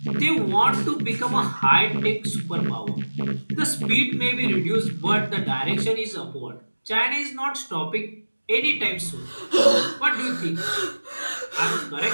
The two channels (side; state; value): both; inverted; correlation -1.00